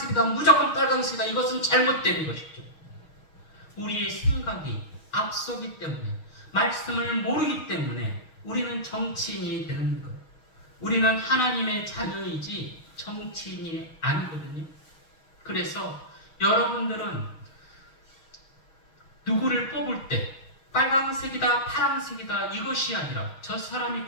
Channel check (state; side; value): late; right; 6.3 ms